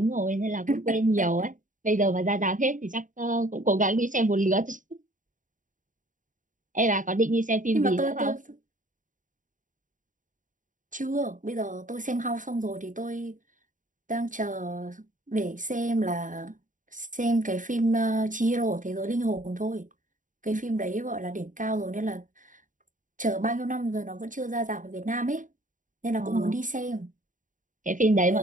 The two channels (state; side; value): late; left; 0.38 ms